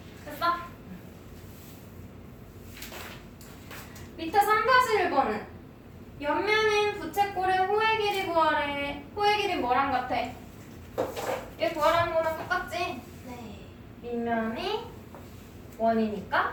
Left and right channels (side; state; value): both; identical; correlation 1.00